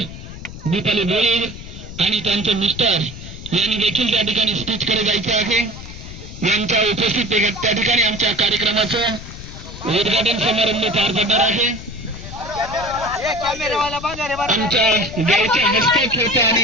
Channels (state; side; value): noise; left; rumble, 12 dB below the sound